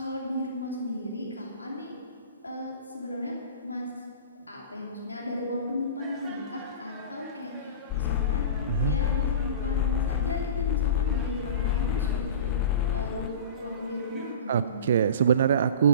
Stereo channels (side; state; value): both; inverted; correlation -0.36